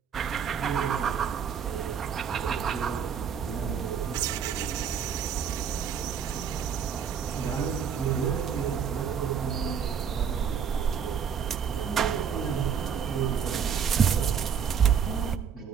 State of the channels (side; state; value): left; quieter; 7.4 dB